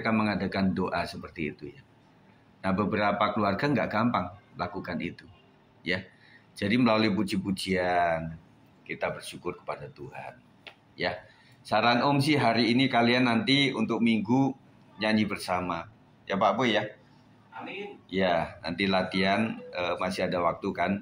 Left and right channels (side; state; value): both; identical; correlation 1.00